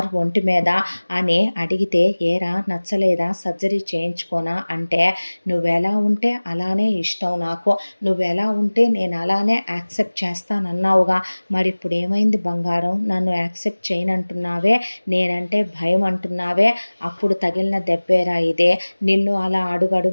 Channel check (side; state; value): both; inverted; correlation -1.00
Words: ఒంటి మీద, నచ్చలేదా అని అడిగితే, ఏరా నచ్చలేదా, సర్జరీ చేయించుకోనా అంటే, నువ్వెలా ఉంటే అలానే ఇష్టం నాకు, నువ్వెలా ఉంటే నేను అలానే యాక్సెప్ట్ చేస్తానన్నావుగా, మరి ఇప్పుడు ఏమైంది బంగారం, నన్ను యాక్సెప్ట్ చేయనంటున్నావే, నేనంటే భయం అంటున్నావే, అప్పుడు తగిలిన దెబ్బేరా ఇదే, నిన్ను అలా